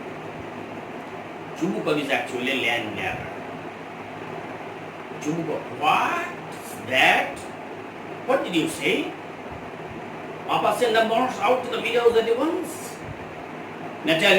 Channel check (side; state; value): both; identical; correlation 1.00